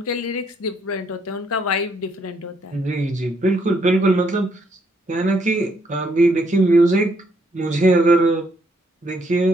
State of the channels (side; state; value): both; normal; correlation 0.72